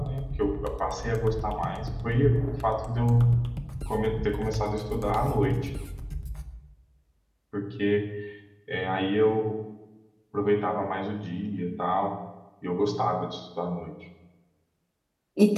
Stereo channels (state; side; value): identical; both; correlation 1.00